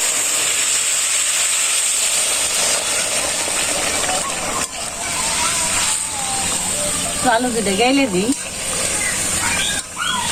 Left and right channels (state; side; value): identical; both; correlation 1.00